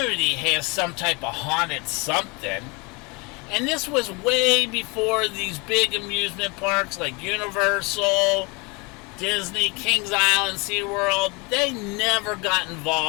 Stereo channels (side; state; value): right; quieter; 28.7 dB